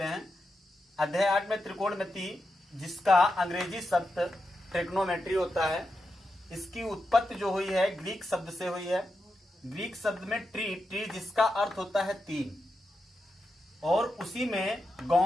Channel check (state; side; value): normal; both; correlation 0.87